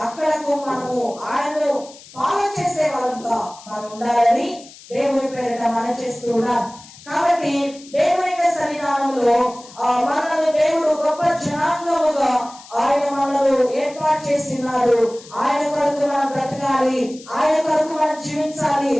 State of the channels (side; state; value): left; noise; hiss, 20 dB below the sound